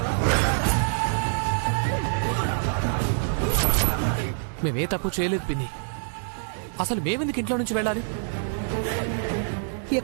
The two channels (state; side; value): silent; left; digital silence